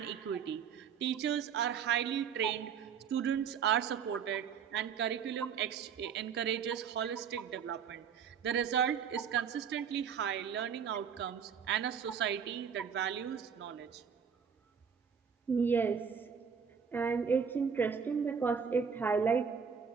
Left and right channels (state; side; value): quieter; left; 7.0 dB